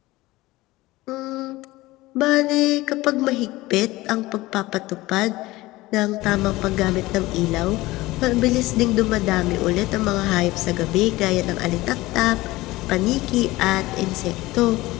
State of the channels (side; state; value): right; quieter; 19.1 dB